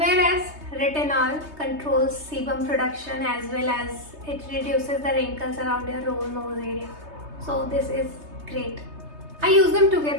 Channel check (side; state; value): left; late; 3.2 ms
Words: retinol controls sebum production as well as it reduces the wrinkles around your nose area. So this is great. I use them